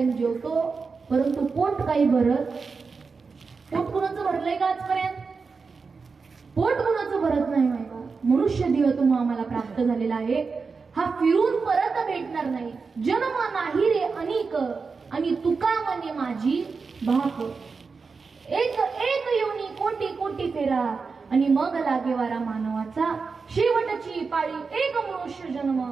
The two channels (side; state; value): left; quieter; 4.8 dB